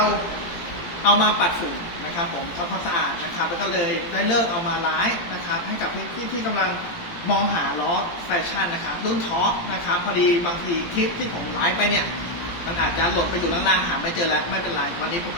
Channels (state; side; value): late; right; 17 ms